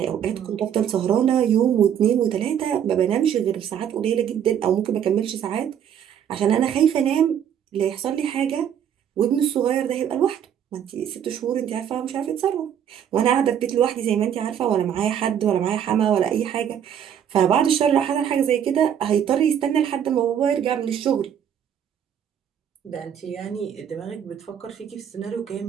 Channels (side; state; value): left; quieter; 9.1 dB